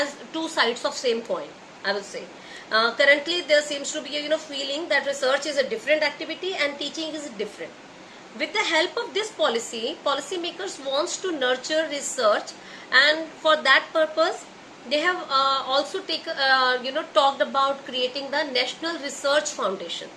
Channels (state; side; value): identical; both; correlation 1.00